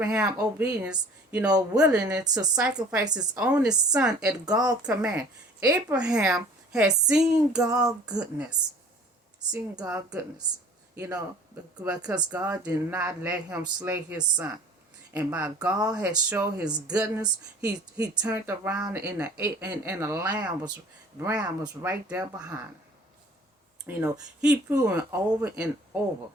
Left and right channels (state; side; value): normal; both; correlation 0.48